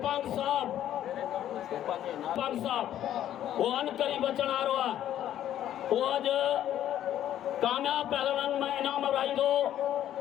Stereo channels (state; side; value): quieter; right; 11.5 dB